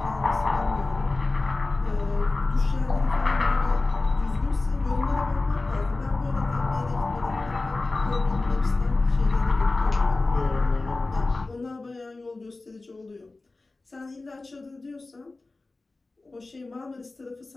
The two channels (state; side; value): quieter; right; 3.4 dB